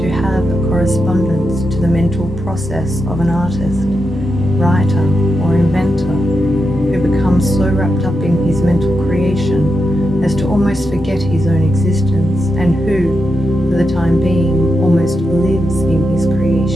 have a correspondence to the mental process of an artist, writer, or inventor who becomes so wrapped up in his mental creation as to almost forget his own existence, and who, for the time being, almost lives in his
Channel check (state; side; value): normal; both; correlation 0.86